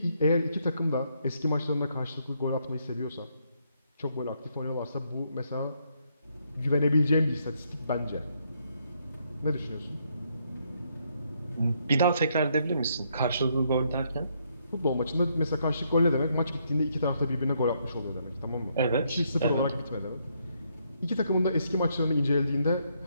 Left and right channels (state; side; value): inverted; both; correlation -0.74